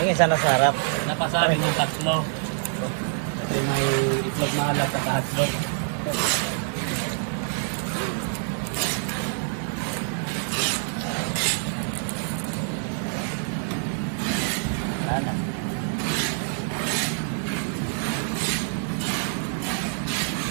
isa nasa harap. Napasabi yung tatlo. Kasi may itlog na alat at hotdog. Wala na.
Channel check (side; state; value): left; silent; 56 dB below the other